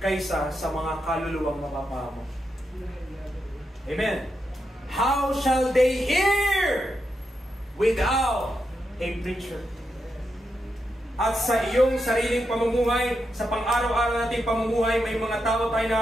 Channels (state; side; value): normal; both; correlation 0.85